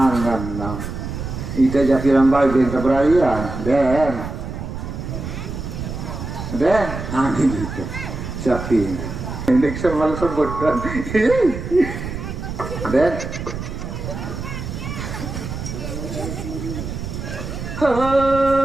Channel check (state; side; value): noise; right; rumble, 7 dB below the sound